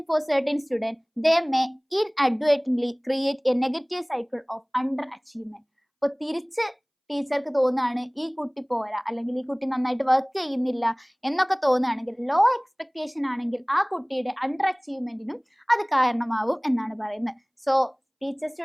for certain students, they may inadvertently create a negative cycle of underachievement. അപ്പോൾ തിരിച്ച് ടീച്ചർക്ക് തോന്നുകയാണ് ഈ കുട്ടി പോരാ, അല്ലെങ്കിൽ ഈ കുട്ടി നന്നായിട്ട് വർക്ക് ചെയ്യുന്നില്ല എന്നൊക്കെ തോന്നുകയാണെങ്കിൽ, ലോ എക്സ്പെക്ടേഷൻ ആണെങ്കിൽ ആ കുട്ടിയുടെ അണ്ടർ അച്ചീവ്മെന്റിനും അത് കാരണമാവും എന്നാണ് പറയുന്നത്. സോ ടീച്ചർ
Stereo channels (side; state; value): both; identical; correlation 1.00